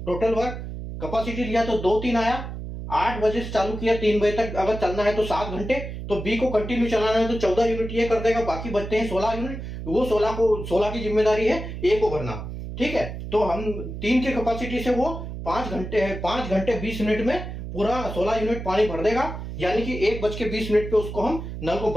टोटल वर्क कैपेसिटी लिया तो 2-3 आया। 8 बजे से चालू किया, 3 बजे तक अगर चलना है तो 7 घंटे। तो बी को कंटिन्यू चलाना है तो 14 यूनिट ये कर देगा, बाकी बचते हैं 16 यूनिट। वो 16 की जिम्मेदारी है ए को भरना, ठीक है। तो हम 3 की कैपेसिटी से वो 5 घंटे 20 मिनट में पूरा 16 यूनिट पानी भर देगा। यानी कि 1:20 पे उसको हम नल को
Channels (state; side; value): noise; right; hum, 8 dB below the sound